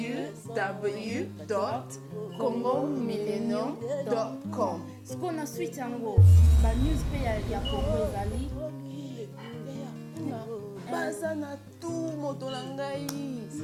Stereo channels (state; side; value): identical; both; correlation 1.00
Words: Siko na switch yango ba news pe ya Congo ezali. Baza na tu moto na ngai.